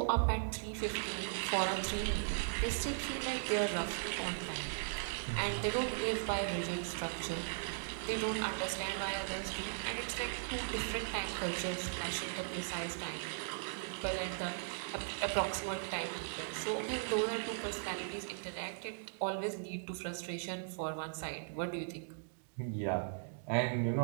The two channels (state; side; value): silent; left; digital silence